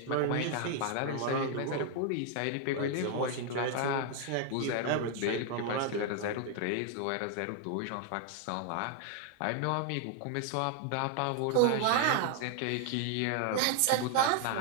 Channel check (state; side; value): different; both; correlation 0.00